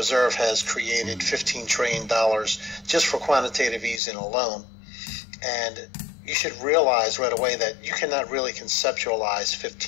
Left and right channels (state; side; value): drops out; right; at 4.0 s